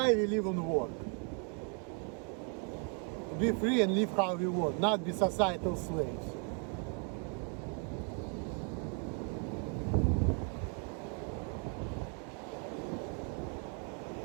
we live and work? To be free and live how we want, not be societal slaves.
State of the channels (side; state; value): left; quieter; 39.4 dB